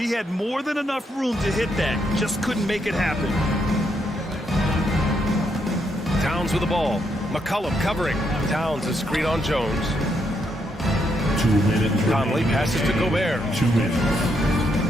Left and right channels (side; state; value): both; normal; correlation 0.77